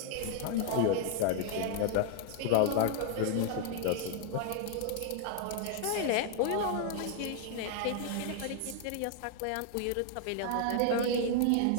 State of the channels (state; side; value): different; both; correlation 0.00